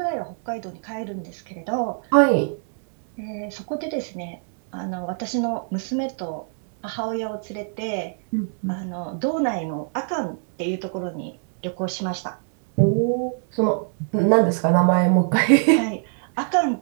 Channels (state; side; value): silent; left; 59 dB below the other